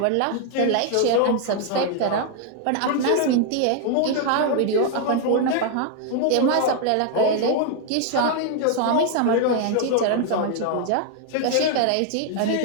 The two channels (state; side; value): different; both; correlation 0.00